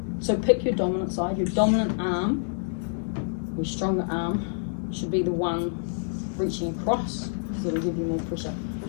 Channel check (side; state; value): right; silent; digital silence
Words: So pick your dominant side. Your dominant arm, your stronger arm, should be the one reaching across because it'll give you more pressure. If